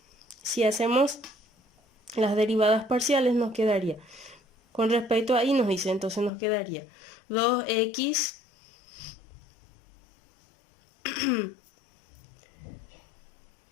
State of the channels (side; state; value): right; drops out; at 6.3 s